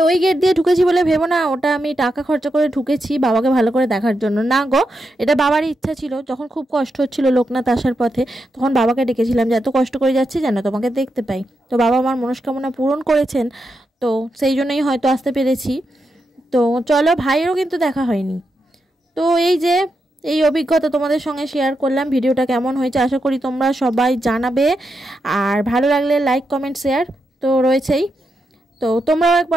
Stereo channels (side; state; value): both; normal; correlation 0.85